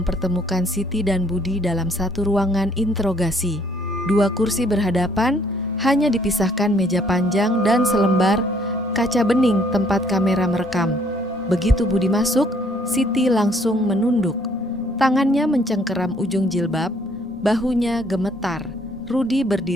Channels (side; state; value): both; normal; correlation 0.64